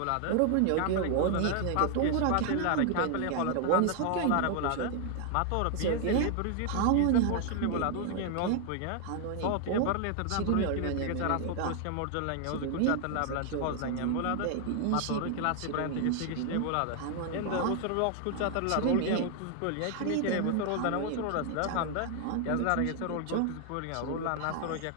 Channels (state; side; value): different; both; correlation 0.00